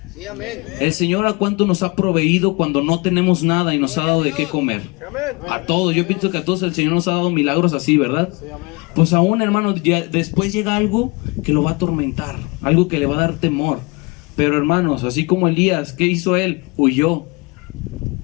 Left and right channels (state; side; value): quieter; right; 27.5 dB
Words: Sí, amén. El Señor a cuánto nos ha proveído cuando no tenemos nada y nos ha dado de qué comer. A todos, yo pienso que a todos el Señor nos ha dado milagros así, ¿verdad? Pues aún, hermano, ya después llega algo que lo va a atormentar, algo que le va a dar temor. Pero hermanos, así como Elías, ¿qué hizo él? Huyó.